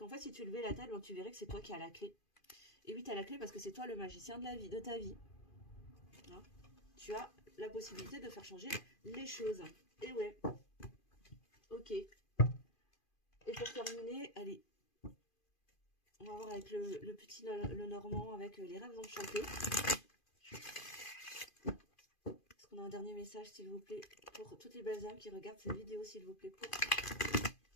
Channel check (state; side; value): late; right; 2.5 ms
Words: fait, si tu levais la tête, ben, tu verrais que c'est toi qui as la clé. Et oui, tu as la clé parce que c'est toi le magicien de la vie, de ta vie. Hein, tu as la possibilité de faire changer les choses. Et ouais. Ok. Et pour terminer, allez. On va voir avec le petit le Normand, avec les rêves enchantés. Est-ce qu'on a un dernier message, s'il vous plaît, pour toutes les belles âmes qui regardent cette vidéo, s'il vous plaît, pour